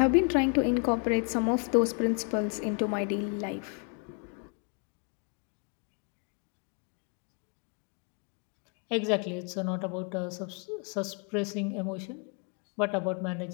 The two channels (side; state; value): right; quieter; 39.4 dB